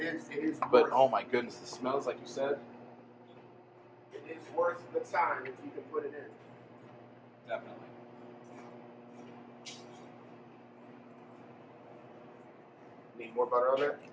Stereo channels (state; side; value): identical; both; correlation 1.00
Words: is. But worth oh my goodness, the smells, like you said. It is worth the time if you can put it in. Definitely. Need more butter on that?